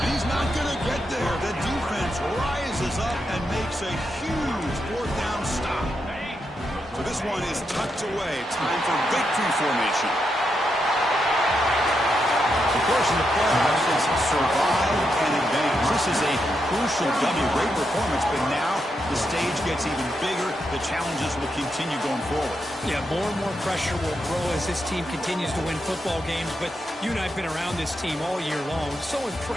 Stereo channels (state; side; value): normal; both; correlation 0.83